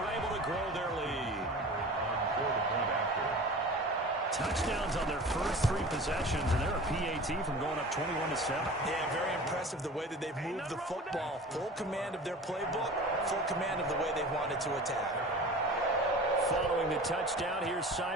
able to grow their lead. Touchdowns on their first 3 possessions, and they're a PAT from going up 21-7. Yeah, very impressive the way that they've moved the football. Full command of their playbook, full command of the way they wanted to attack. Following the touchdown, here's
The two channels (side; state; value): both; normal; correlation 0.38